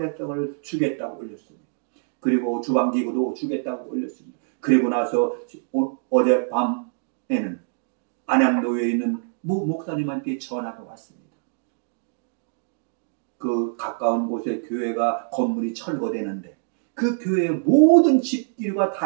주겠다고 올렸습니다. 그리고 주방기구도 주겠다고 올렸습니다. 그리고 나서 어젯밤에는 안양교회에 있는 모 목사님한테 전화가 왔습니다. 그 가까운 곳에 교회가 건물이 철거되는데 그 교회의 모든 집기류가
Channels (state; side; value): silent; left; digital silence